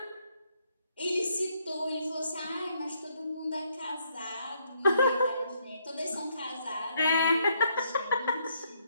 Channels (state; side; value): inverted; both; correlation -0.72